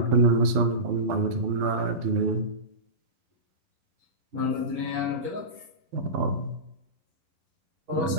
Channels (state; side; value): late; left; 12 ms